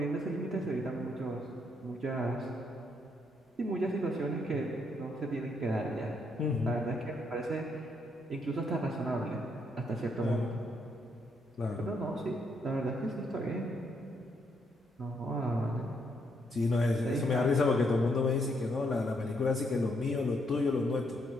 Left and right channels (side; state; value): both; normal; correlation 0.75